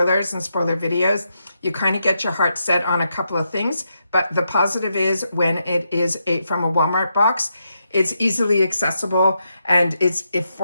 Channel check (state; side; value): inverted; both; correlation -0.83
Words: and spoiler videos, you kind of get your heart set on a couple of things. But the positive is when it is from a Walmart box, it's easily accessible and it's